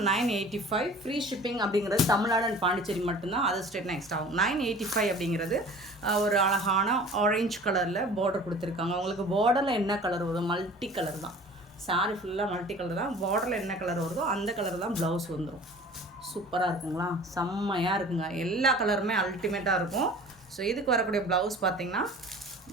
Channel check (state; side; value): normal; both; correlation 0.44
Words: 985 ஃப்ரீ ஷிப்பிங் அப்படிங்கிறது தமிழ்நாடு அண்ட் பாண்டிச்சேரி மட்டும்தான். அதர் ஸ்டேட் நெக்ஸ்ட் ஆகும். 985 அப்படிங்கிறது ஒரு அழகான ஆரஞ்ச் கலரில் பார்டர் கொடுத்துருக்காங்க. உங்களுக்கு பார்டரில் என்ன கலர் வருதோ மல்டி கலர் தான். சாரி ஃபுல்லாக மல்டி கலர் தான். பார்டரில் என்ன கலர் வருதோ அந்த கலர் தான் ப்ளவுஸ் வந்துடும். சூப்பராக இருக்குங்களா, செம்மையாக இருக்குங்க. எல்லா கலருமே அல்டிமேட்டாக இருக்கும். ஸோ இதுக்கு வரக்கூடிய ப்ளவுஸ் பார்த்திங்கன்னா